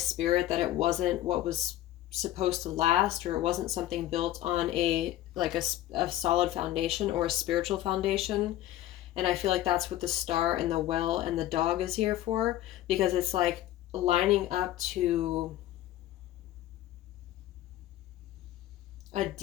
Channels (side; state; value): right; quieter; 13.9 dB